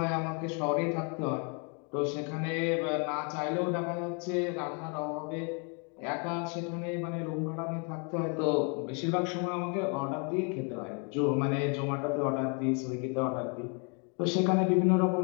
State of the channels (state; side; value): quieter; right; 36.6 dB